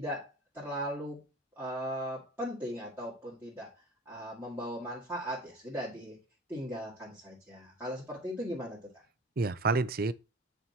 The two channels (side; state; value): both; normal; correlation 0.40